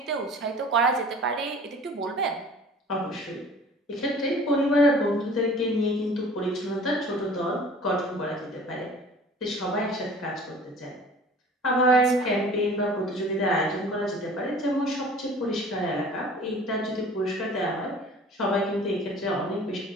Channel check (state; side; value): normal; both; correlation 0.46